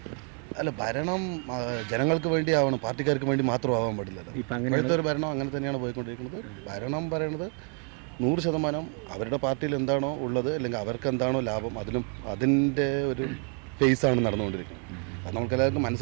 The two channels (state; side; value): quieter; left; 39.5 dB